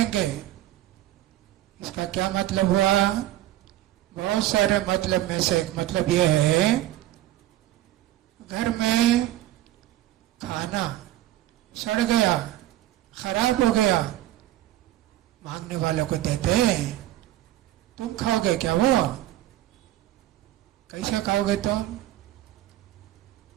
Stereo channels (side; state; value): left; quieter; 14.3 dB